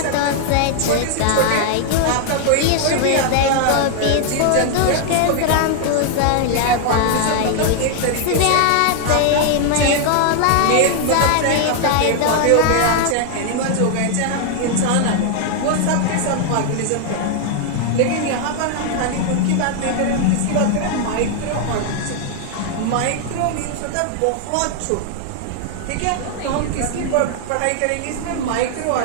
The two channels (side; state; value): both; different; correlation 0.00